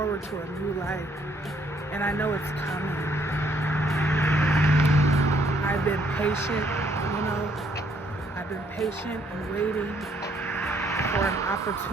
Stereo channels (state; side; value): normal; both; correlation 0.67